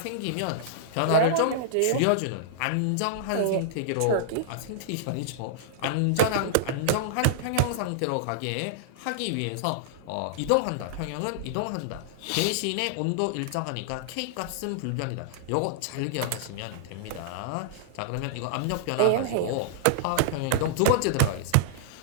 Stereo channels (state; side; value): different; both; correlation -0.02